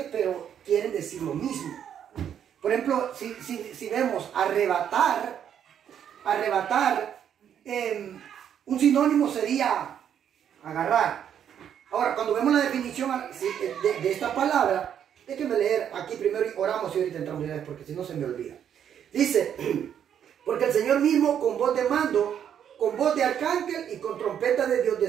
pero quieren decir lo mismo. Por ejemplo, si vemos arrebatar, un sinónimo sería agarrar. Ahora, cuando vemos la definición de esta palabra, déjenme leer aquí primero y oramos y ahorita entramos en porque si no se me olvida. Dice, porque el Señor mismo con voz de mando, con voz de arcángel y con trompeta de Dios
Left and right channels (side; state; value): left; quieter; 9.1 dB